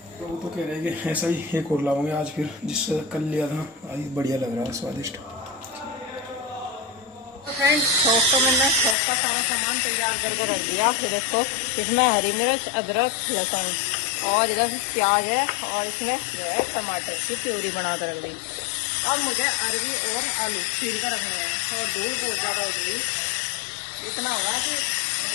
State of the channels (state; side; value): drops out; right; at 9.0 s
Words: तो वो तो कह रहे हैं कि ऐसा ही एक और लाऊंगे आज, फिर जिससे कल लिया था आज बढ़िया लग रहा है, स्वादिष्ट। तो फ्रेंड्स छौंक तो मैंने छौंक का सारा सामान तैयार करके रख दिया। फिर देखो इसमें हरी मिर्च, अदरक, लहसुन और इधर प्याज है, और इसमें जो है टमाटर की प्यूरी बना कर रख दी। अब मुझे अरवी और आलू छील कर रखने हैं। और धूल बहुत ज़्यादा हो गई, इतना हो रहा कि